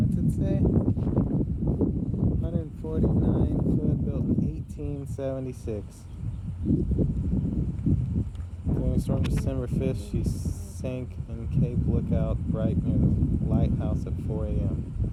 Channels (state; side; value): identical; both; correlation 1.00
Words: it say? 149 foot, built in 1876. During a storm December 5th, she sank in Cape Lookout right near the lighthouse at 4 a.m.